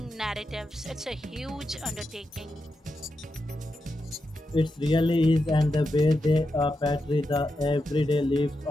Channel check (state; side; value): normal; both; correlation 0.87